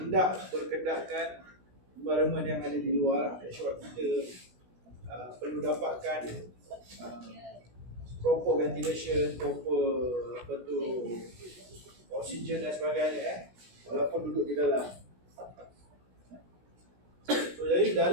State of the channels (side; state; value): left; late; 16 ms